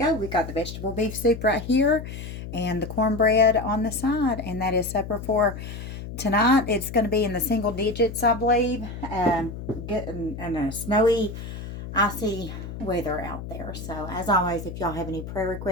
We got the vegetable beef soup right here and the cornbread on the side, and that is supper for tonight. It's going to be in the single digits, I believe. Getting in a snowy, icy weather out there. So, as always, if y'all have any prayer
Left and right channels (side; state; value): left; noise; hum, 9 dB below the sound